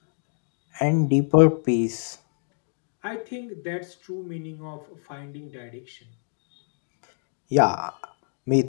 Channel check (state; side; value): silent; right; digital silence